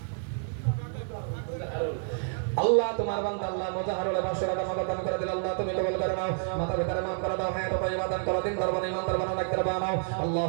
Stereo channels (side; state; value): left; silent; digital silence